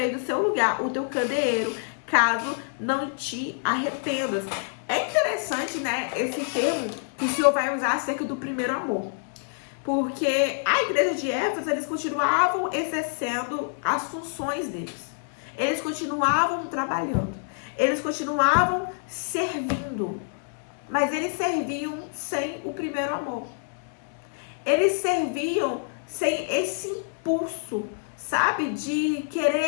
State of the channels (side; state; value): right; silent; digital silence